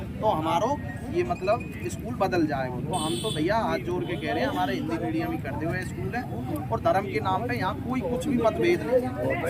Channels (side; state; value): both; identical; correlation 1.00